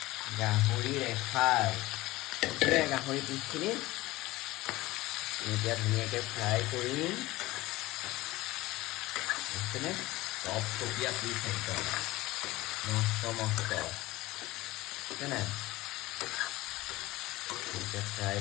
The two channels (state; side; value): quieter; right; 18.7 dB